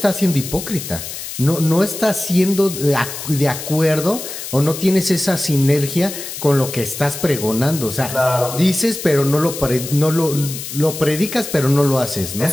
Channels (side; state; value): left; noise; hiss, 9 dB below the sound